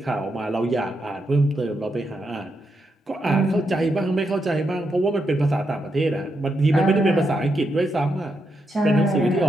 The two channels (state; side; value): normal; both; correlation 0.82